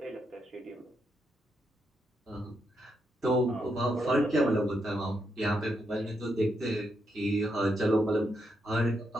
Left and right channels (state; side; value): normal; both; correlation 0.81